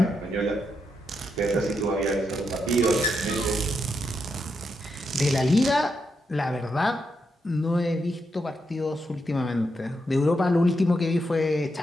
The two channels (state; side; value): normal; both; correlation 0.83